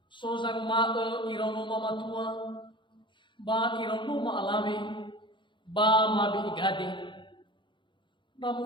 Sozang ma irano mamatua. Ba irano ma alave. Ba mabi igade.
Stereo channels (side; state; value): right; late; 0.23 ms